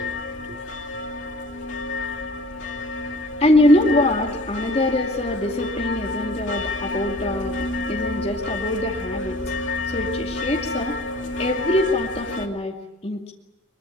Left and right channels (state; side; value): normal; both; correlation 0.48